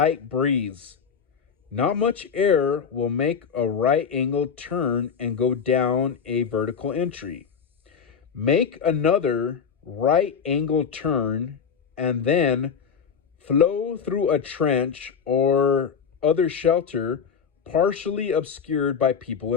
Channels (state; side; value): quieter; right; 6.5 dB